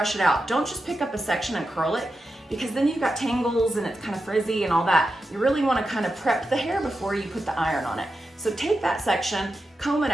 it out. Don't just pick up a section and curl it, because then you've got tangles and it's kind of frizzy and all that. You really wanna kind of prep the hair before you put the iron on it. So take that section, comb it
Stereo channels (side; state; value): both; normal; correlation 0.89